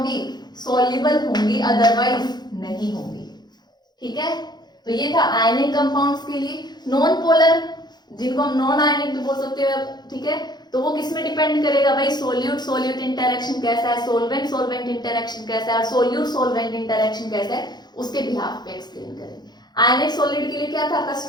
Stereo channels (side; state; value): right; late; 0.20 ms